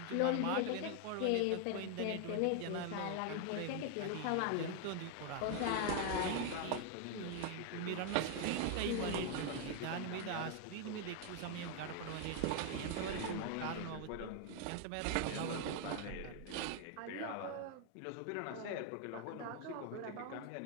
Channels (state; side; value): different; both; correlation 0.01